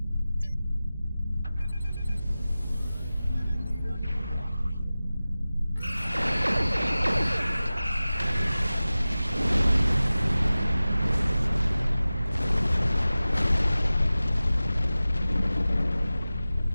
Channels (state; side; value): inverted; both; correlation -0.96